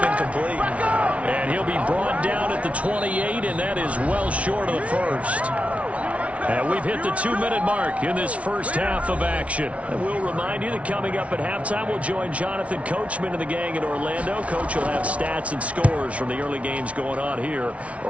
And he'll be brought down at the 28, and that is well short of the first. And we've hit the 2-minute mark in this first half of action. And we'll remind you that coming up at halftime, we'll join Jonathan Coachman and the gang in Orlando. Coach will have stats and scores from the early games going on here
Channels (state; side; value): late; left; 0.064 ms